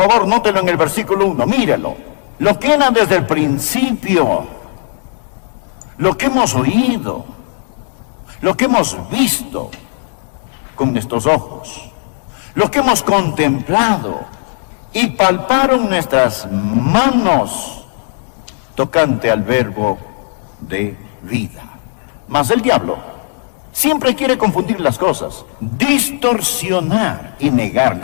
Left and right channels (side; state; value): right; silent; 62 dB below the other